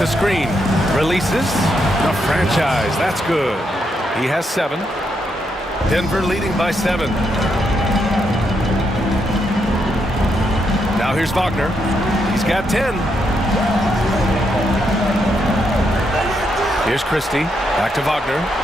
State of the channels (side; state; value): both; normal; correlation 0.79